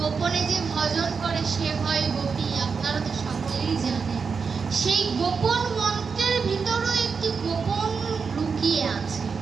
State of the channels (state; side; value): quieter; left; 5.4 dB